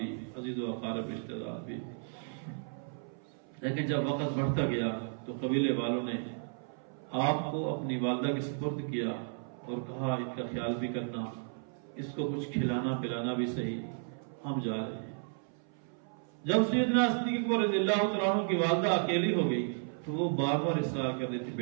عزیز و اقارب رشتہ دار بھی۔ لیکن جب وقت بڑھتا گیا تو قبیلے والوں نے آپ کو اپنی والدہ کے سپرد کیا اور کہا ان کا خیال بھی کرنا، اس کو کچھ کھلانا پلانا بھی صحیح، ہم جا رہے ہیں۔ جب سیدنا صدیق اکبر رضی اللہ تعالیٰ عنہ کی والدہ اکیلی ہو گئی تو وہ بار بار اصرار کر رہی تھی،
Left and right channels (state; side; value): silent; left; 55 dB below the other